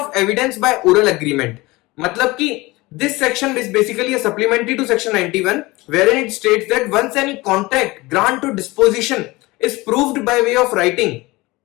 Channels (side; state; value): right; quieter; 21.7 dB